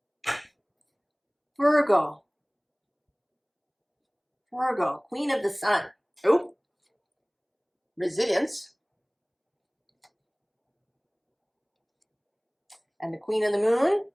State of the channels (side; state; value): both; identical; correlation 1.00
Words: Virgo. Virgo, Queen of the Sun. Oh, resilience. And the Queen of the Moon,